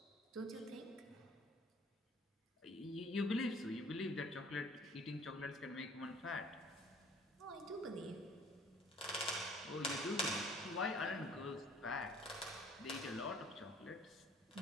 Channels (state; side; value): normal; both; correlation 0.54